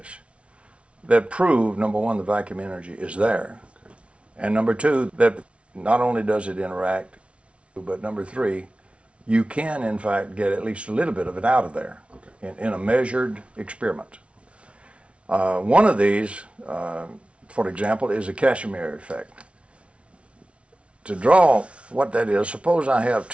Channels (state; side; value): late; left; 0.061 ms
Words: that prove, number one, the vacuum energy is there, and number two, that not only does it interact, but number three, you can in fact get at least a little bit of it out of there in a measured experiment. One of these, for example, is a Casimir effect. To draw what that is, suppose I have